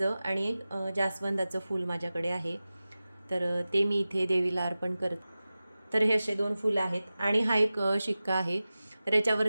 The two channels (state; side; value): inverted; both; correlation -0.96